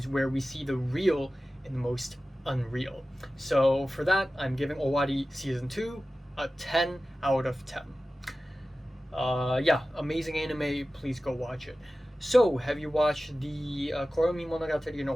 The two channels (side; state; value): both; normal; correlation 0.96